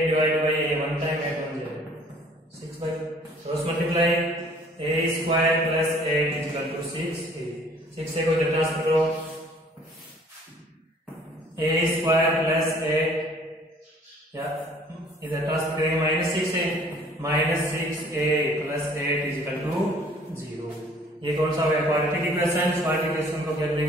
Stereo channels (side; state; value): both; normal; correlation 0.55